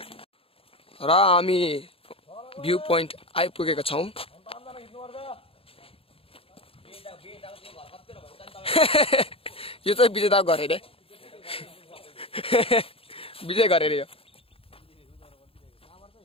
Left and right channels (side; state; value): right; late; 0.27 ms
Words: र हामी भ्यू पोइन्ट आइपुगेका छौँ यो चाहिँ विजेता घर अरे विजय घर अरे यो